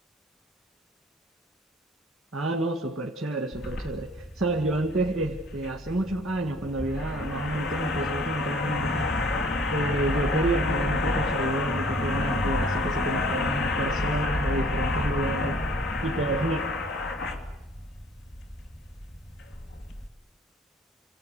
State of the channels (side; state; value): both; normal; correlation 0.55